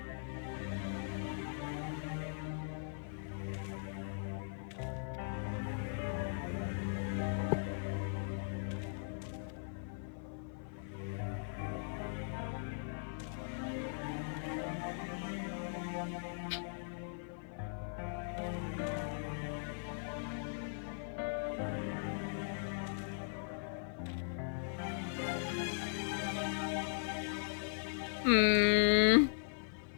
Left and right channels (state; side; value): silent; right; 51 dB below the other